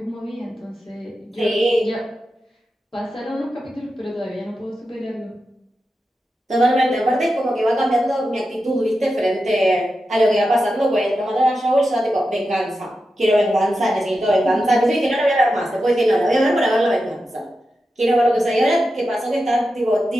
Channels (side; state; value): both; normal; correlation 0.90